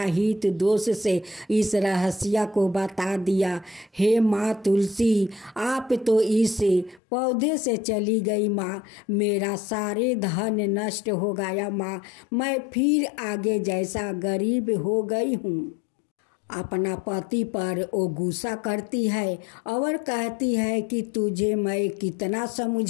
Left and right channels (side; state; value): right; drops out; at 7.0 s